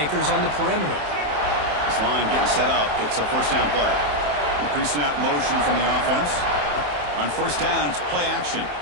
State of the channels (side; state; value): left; late; 27 ms